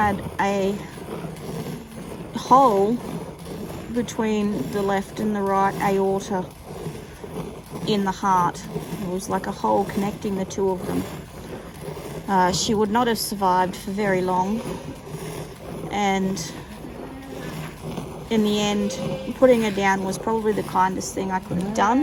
a hole between the left and the right aorta in the heart. It was like a hole connecting the two of them. She would not have survived for very long, and in the end, putting her down was probably the kindest thing I could have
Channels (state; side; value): identical; both; correlation 1.00